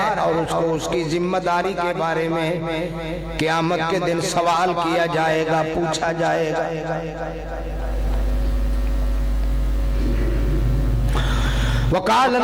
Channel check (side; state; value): both; identical; correlation 1.00